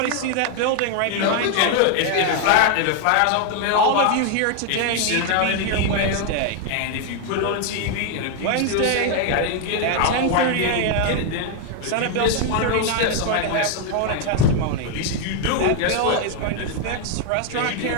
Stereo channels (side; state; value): both; different; correlation 0.01